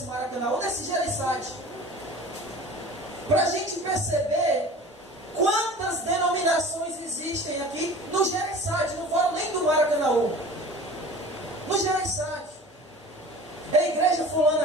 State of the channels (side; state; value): both; normal; correlation 0.41